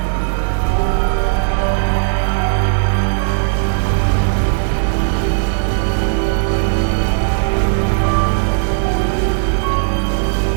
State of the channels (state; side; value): silent; left; 59 dB below the other